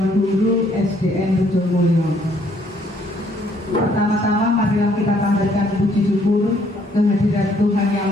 Guru SDN Rejomulyo. Pertama-tama marilah kita panjatkan puji syukur kehadirat Tuhan Yang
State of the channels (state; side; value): normal; both; correlation 0.66